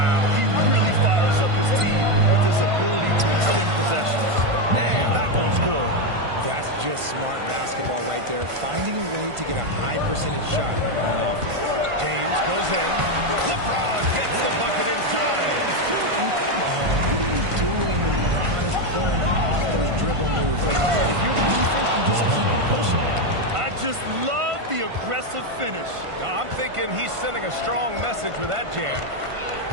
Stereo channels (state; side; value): late; left; 1.5 ms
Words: he really fires up his team with his ability to extend possessions. Man, that one's good. That's just smart basketball right there, finding a way to get a high percentage shot on offense. James goes in. LeBron gets the bucket inside. And come on, what are you doing when LeBron is pulling off those dribble moves? Like, if you're the defense, you just keep it pushing. I just love the aggressive finish. I'm thinking he's sending a strong message with that jam.